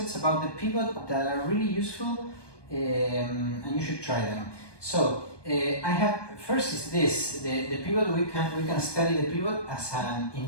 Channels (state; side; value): late; right; 1.2 ms